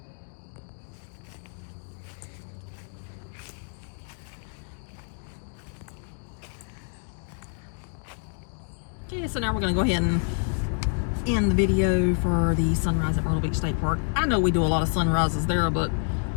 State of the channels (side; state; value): right; silent; 60 dB below the other